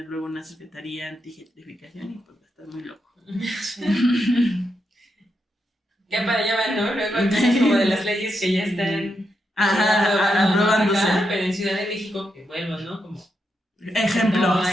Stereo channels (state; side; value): normal; both; correlation 0.83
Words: luego una secretaría anti-gentrificación y pues va a estar muy loco. Sí. Ya para allá van, ¿no? Luego hay cosas como de las leyes que ya están aprobándose. Pero en Ciudad de México, que vuelvo, ¿no? Como ejemplo. No